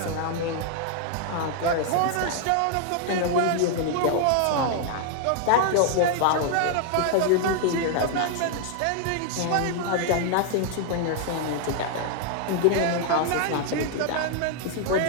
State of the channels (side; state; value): both; different; correlation 0.00